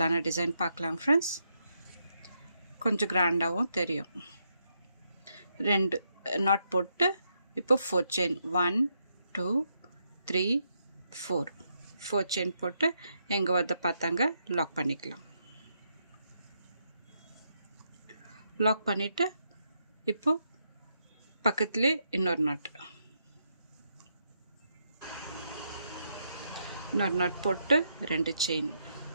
டிசைன் பார்க்கலாம் ஃப்ரெண்ட்ஸ். கொஞ்சம் கிராண்டாகவும் தெரியும். ரெண்டு நாட் போட்டு இப்போ 4 செயின் 1 2 3 4 செயின் போட்டு எங்கே வந்து பார்த்தாங்க லாக் பண்ணிக்கலாம். லாக் பண்ணிவிட்டு இப்போ பக்கத்துலேயே இன்னொரு நாட் போட்டு ரெண்டு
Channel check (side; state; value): both; inverted; correlation -0.79